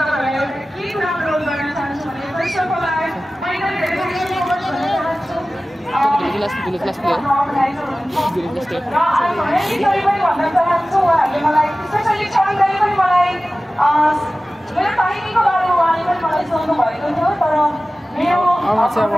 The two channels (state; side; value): normal; both; correlation 0.96